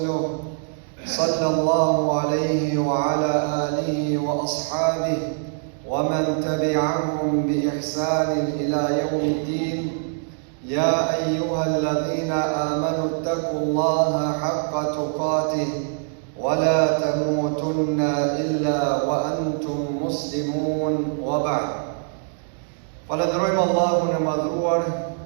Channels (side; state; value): left; silent; 63 dB below the other